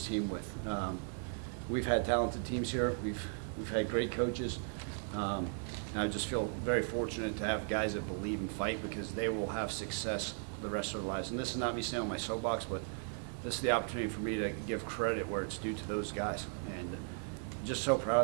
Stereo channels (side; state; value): left; silent; 53 dB below the other